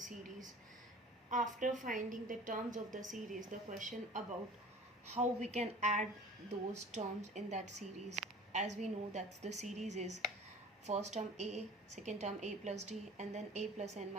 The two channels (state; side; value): normal; both; correlation 0.43